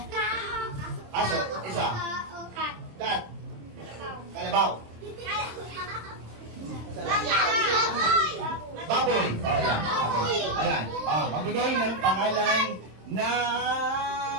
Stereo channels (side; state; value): left; late; 26 ms